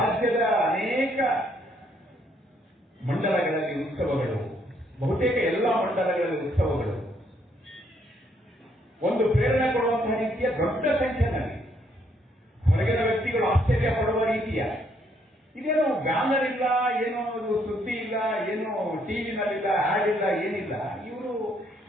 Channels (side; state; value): both; normal; correlation 0.70